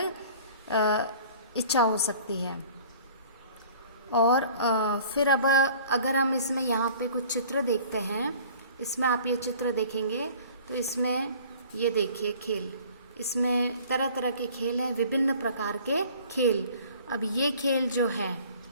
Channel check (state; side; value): inverted; both; correlation -0.48